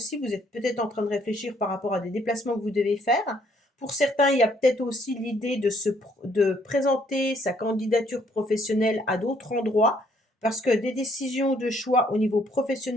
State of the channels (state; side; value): normal; both; correlation 0.66